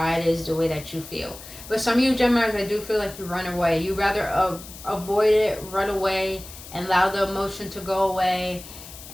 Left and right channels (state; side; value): noise; left; hiss, 15 dB below the sound